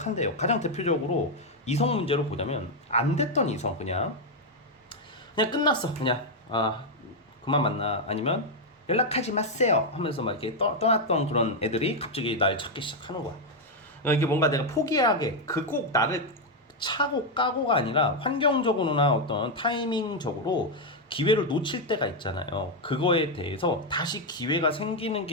가장 대표적으로 이성 문제로 보자면 안 됐던 이성, 그냥 끝났어. 그냥 그만 만나, 아니면 연락하지 마세요 하면서 막 이렇게 떠났던 그런 애들이 갑자기 날 찾기 시작하는 거야. 그러니까 이게 뭔가 내가 포기하게 그 꼭 나를 차고 까고가 아니라 환경적으로나 어떤 타이밍적으로 기회를 놓칠 때가 있잖아요. 그거에 대해서 다시 기회가 생기는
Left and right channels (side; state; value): both; normal; correlation 0.02